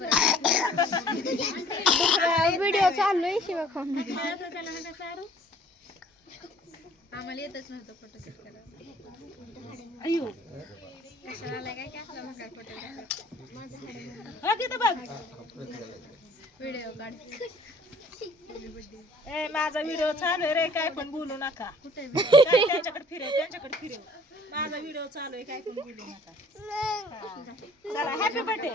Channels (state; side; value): normal; both; correlation 0.54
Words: व्हिडिओ चालू आहे शिवा खाऊन. आम्हाला येतच नव्हतं फोटोशूट करायला. अयो कशाला आलाय काय असला मग काय फोटोग्राफर. हा तिथं बघ व्हिडिओ काढ. ए माझा व्हिडिओ चालू आहे रे काय पण बोलू नका कुठे काय त्यांच्याकडे फिरव माझा व्हिडिओ चालू आहे काय पण बोलू नका हा. चला हॅपी बर्थडे